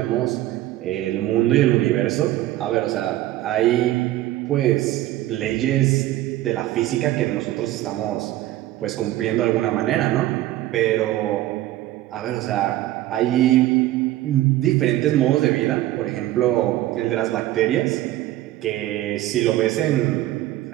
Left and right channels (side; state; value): left; quieter; 15.1 dB